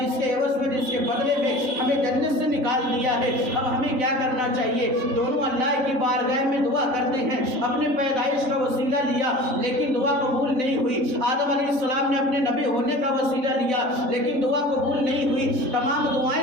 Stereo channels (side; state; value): left; late; 3.7 ms